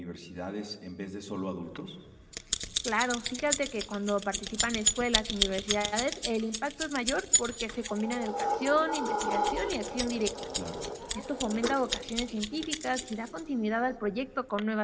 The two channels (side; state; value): both; identical; correlation 1.00